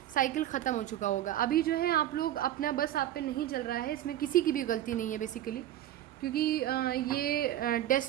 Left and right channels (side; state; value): left; quieter; 12.6 dB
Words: साइकिल ख़त्म हो चुका होगा। अभी जो है आप लोग अपना बस आप पे नहीं चल रहा है, इसमें किसी की भी गलती नहीं है बेसिकली, क्योंकि ये